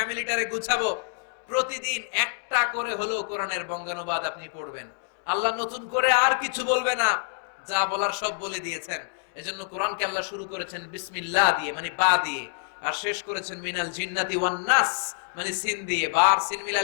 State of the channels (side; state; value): right; silent; digital silence